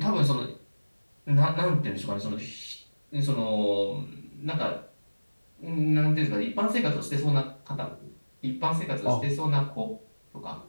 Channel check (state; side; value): inverted; both; correlation -1.00